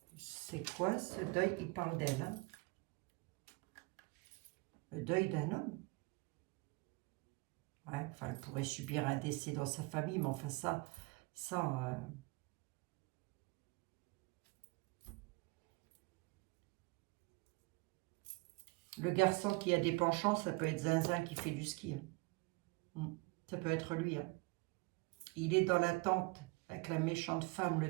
C'est quoi ce deuil? Il parle d'elle. Hein? Le deuil d'un homme. Ouais, enfin, elle pourrait subir un décès dans sa famille, mais enfin ça. Le garçon qui a des penchants, ça peut être Zinzin qui fait du ski. Hein. Ça peut être lui. Hein. Il est dans l'attente avec la méchante femme,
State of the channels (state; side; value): quieter; left; 26.8 dB